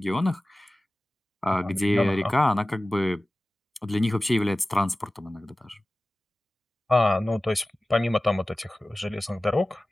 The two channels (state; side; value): normal; both; correlation 0.97